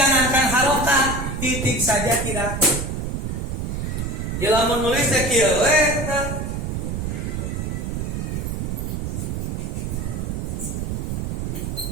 harokat, titik saja tidak. Jika menulis kieu we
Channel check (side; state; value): right; noise; rumble, 2 dB below the sound